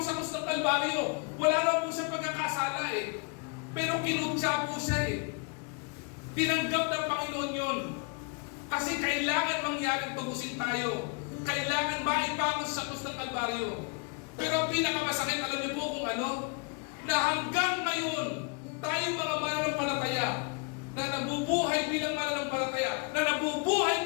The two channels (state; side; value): quieter; right; 33.5 dB